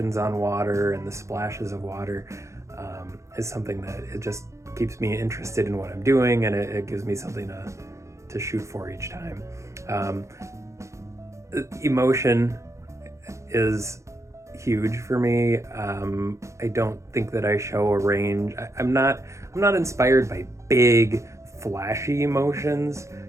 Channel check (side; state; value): left; late; 0.14 ms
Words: on water and the splashes of water is something that it just keeps me interested in what I'm doing, and it gives me something to shoot for each time. Emotion is huge for me. I don't think that I show a range. I'm not inspired by big, flashy emotions